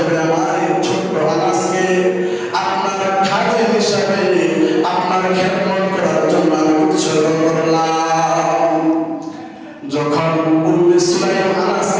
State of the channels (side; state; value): both; identical; correlation 1.00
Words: আমার এই ছোট্ট আনাসকে আপনার খাদেম হিসাবে আপনার খেদমত করার জন্য আমি উৎসর্গ করলাম। যখন উম্মে সুলাইম